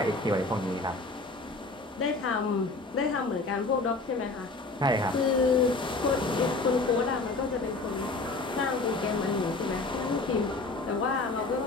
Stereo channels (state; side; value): quieter; right; 3.4 dB